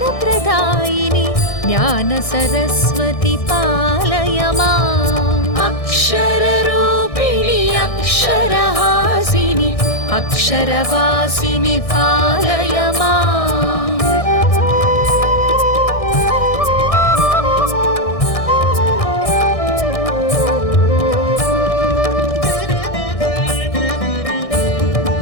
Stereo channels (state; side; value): late; right; 1.6 ms